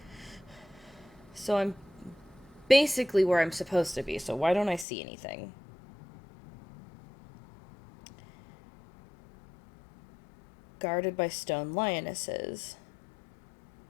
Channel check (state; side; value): drops out; right; at 4.9 s